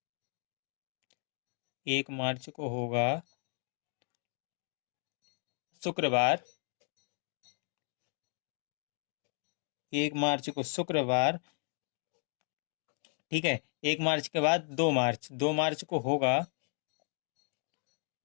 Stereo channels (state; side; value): silent; right; 54 dB below the other